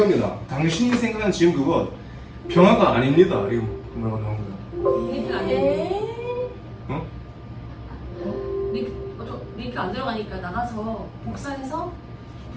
당신이 생각하는 지금 그것 평화가 아닙니다. 이거 뭐라고 나온 거야? 링크 안 돼. 어? 링크 안 들어가니까 나가서 복사해서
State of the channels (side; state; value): both; identical; correlation 1.00